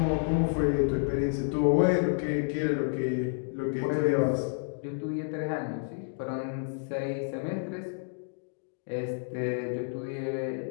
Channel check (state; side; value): silent; right; digital silence